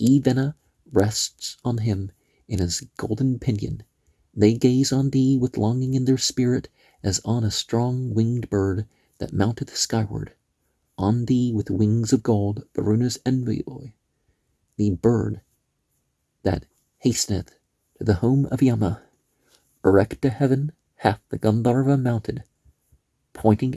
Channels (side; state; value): both; identical; correlation 1.00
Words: Vena, rests on him in his golden pinion. They gaze on thee with longing in their spirit, as on a strong winged bird that mounteth skyward. On thee with wings of gold, Varuna's envoy, the bird that hasteneth to the home of Yama. Erect to heaven hath the Gandharva mounted, pointing